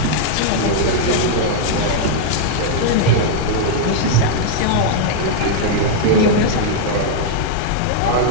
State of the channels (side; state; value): both; different; correlation -0.01